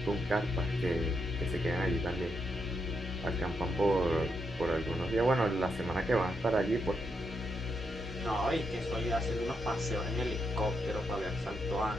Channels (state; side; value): normal; both; correlation 0.81